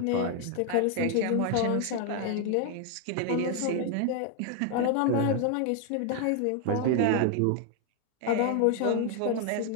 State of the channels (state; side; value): different; both; correlation 0.01